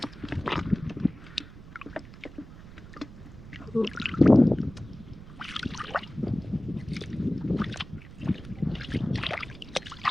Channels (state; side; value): noise; right; rumble, 16 dB below the sound